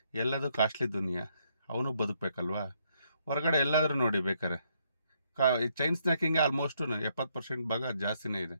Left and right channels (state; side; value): inverted; both; correlation -0.73